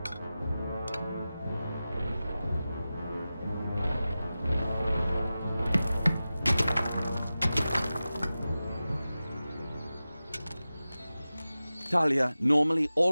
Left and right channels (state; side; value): inverted; both; correlation -0.95